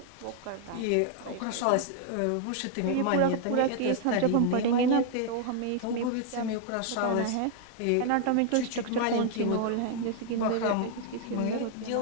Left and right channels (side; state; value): both; different; correlation 0.00